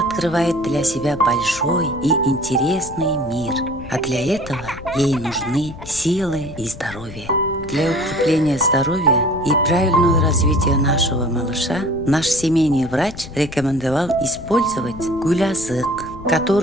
открывает для себя большой и интересный мир, а для этого ей нужны силы и здоровье. Для укрепления здоровья и правильного развития нашего малыша наш семейный врач рекомендовал использовать гулясык,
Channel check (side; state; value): left; noise; rumble, 15 dB below the sound